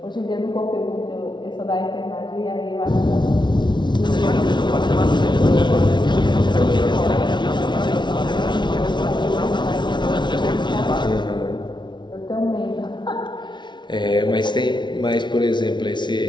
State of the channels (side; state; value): right; late; 0.22 ms